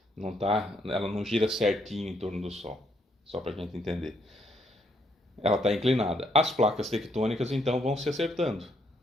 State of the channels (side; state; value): both; normal; correlation 0.72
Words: não gira certinho em torno do Sol, só para a gente entender. Ela está inclinada. As placas tectônicas então vão se acertando,